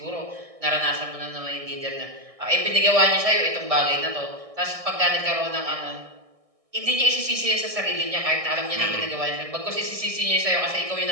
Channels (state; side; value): late; left; 1.6 ms